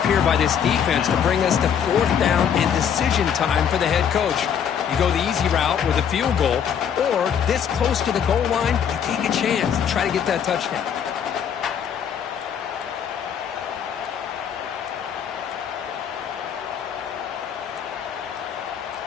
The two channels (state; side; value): quieter; right; 8.1 dB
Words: here by this defense to bring us to fourth down and decision time for the head coach. You go the easy route with a field goal, or this close to the goal line, you take a chance and try to get that touchdown.